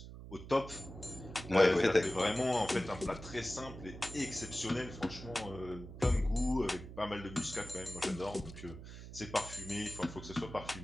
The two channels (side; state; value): right; noise; hum, 13 dB below the sound